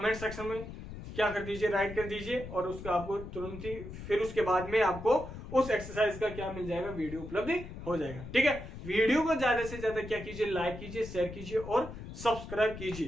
सेक्शन में क्या कर दीजिए, राइट कर दीजिए, और उसका आपको तुरंत ही फिर उसके बाद में आपको उस एक्सरसाइज का क्या मिल जाएगा, वीडियो उपलब्ध हो जाएगा। ठीक है, वीडियो को ज्यादा से ज्यादा क्या कीजिए, लाइक कीजिए, शेयर कीजिए और सब्सक्राइब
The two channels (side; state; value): left; noise; rumble, 11 dB below the sound